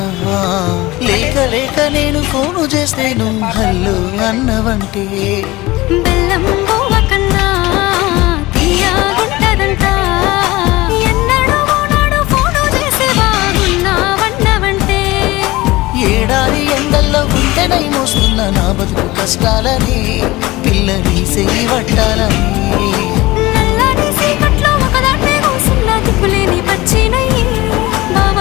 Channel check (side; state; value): right; quieter; 19.8 dB